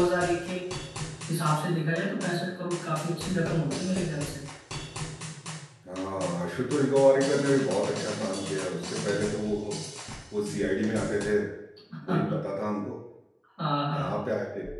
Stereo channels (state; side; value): identical; both; correlation 1.00